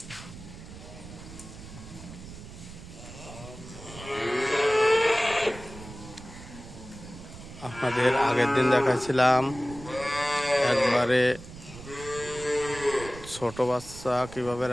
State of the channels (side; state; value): right; noise; rumble, 15 dB below the sound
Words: আপনাদের আগের দিন দেখাচ্ছিলাম একবারে ছোট বাচ্চা কিভাবে